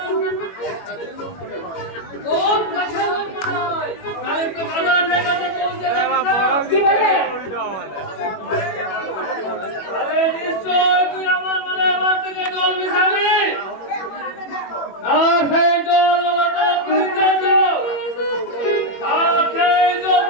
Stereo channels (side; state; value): right; late; 21 ms